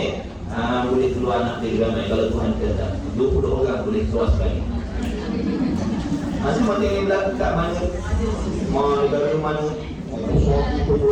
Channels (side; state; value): both; identical; correlation 1.00